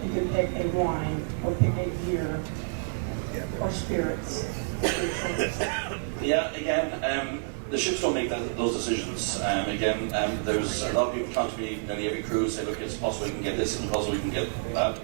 you can pick a wine or pick a beer or spirits? Yeah, again, the ships don't make those decisions. There's a lot of people come to me nearly every cruise say, look, it's possible we can get this and possible we can get that.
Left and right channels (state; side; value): silent; left; 59 dB below the other